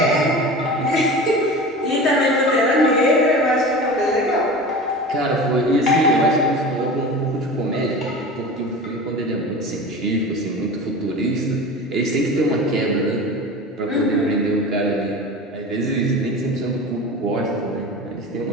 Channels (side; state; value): both; normal; correlation 0.33